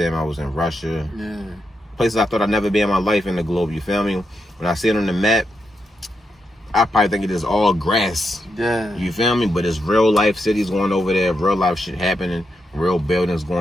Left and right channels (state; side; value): normal; both; correlation 0.84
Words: I was in Russia. Places I thought I'd never be in my life in the globe. You feel me? When I see it on the map, I probably think it is all grass. Yeah. You feel me? But it's real life cities going over there, real life shit happening, real buildings